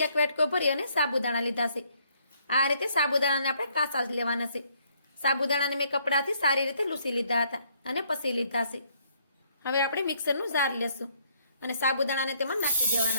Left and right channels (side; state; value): both; inverted; correlation -0.68